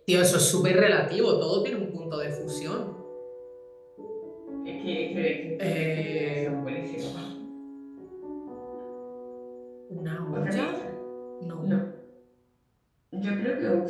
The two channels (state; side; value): identical; both; correlation 1.00